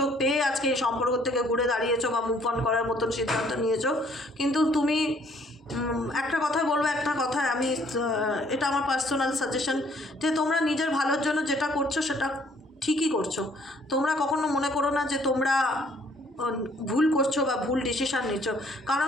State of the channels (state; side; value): normal; both; correlation 0.62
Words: পেয়ে আজকে এই সম্পর্ক থেকে ঘুরে দাঁড়িয়েছো বা মুভ অন করার মতন সিদ্ধান্ত নিয়েছো। কিন্তু তুমি একটা কথা বলবো, একটা কথা আমি, এটা আমার পার্সোনাল সাজেশন, যে তোমরা নিজের ভালোর জন্য যেটা করছো সেটা ঠিকই করছো। তোমরা কখনো মনে করো না যে তোমরা ভুল করছো বা ভুল ডিসিশান নিচ্ছ, কারণ